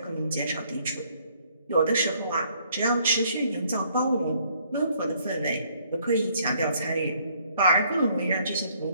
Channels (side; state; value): both; inverted; correlation -0.66